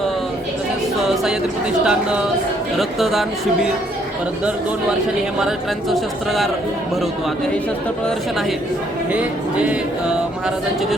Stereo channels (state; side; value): normal; both; correlation 0.67